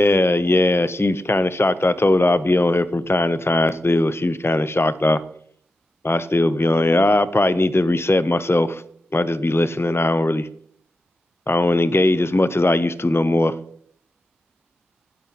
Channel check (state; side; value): normal; both; correlation 0.89